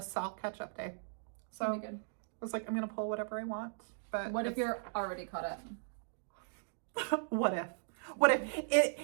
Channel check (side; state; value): left; silent; digital silence